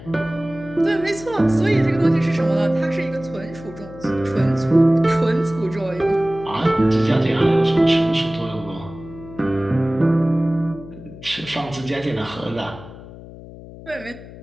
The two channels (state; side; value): noise; left; hum, 16 dB below the sound